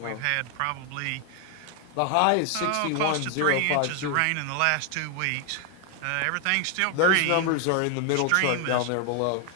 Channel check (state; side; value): different; both; correlation 0.00